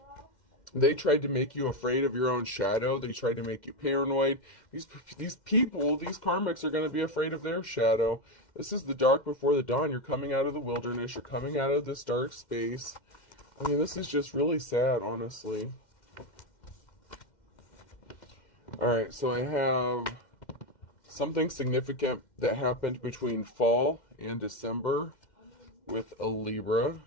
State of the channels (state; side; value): late; right; 2.1 ms